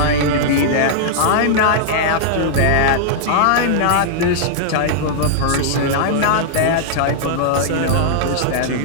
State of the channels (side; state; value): both; different; correlation -0.01